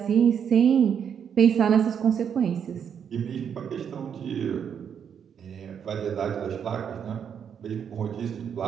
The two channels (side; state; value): left; quieter; 7.8 dB